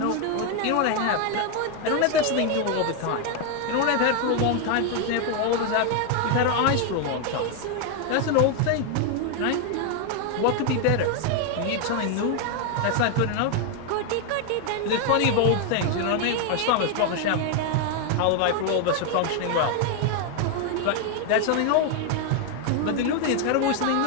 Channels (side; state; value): both; different; correlation 0.01